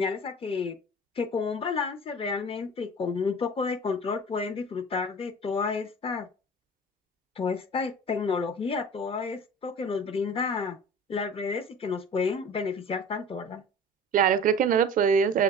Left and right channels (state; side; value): normal; both; correlation 0.39